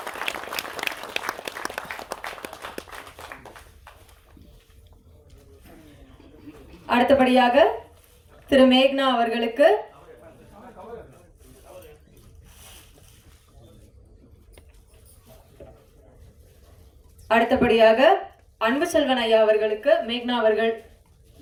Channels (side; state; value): both; identical; correlation 1.00